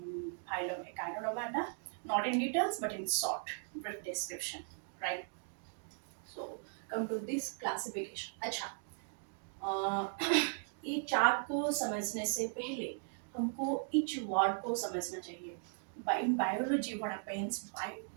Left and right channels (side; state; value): left; silent; digital silence